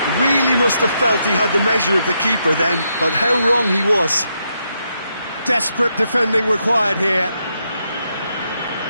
really must have felt he had the measure of the keeper then, but how wrong he was. Desperate defending required here.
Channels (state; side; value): inverted; both; correlation -0.80